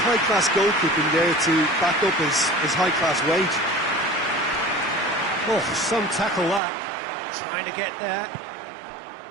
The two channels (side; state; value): left; drops out; at 6.6 s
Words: goalkeeping there to back up his high-class weight. Oh, some tackle that. Trying to get there.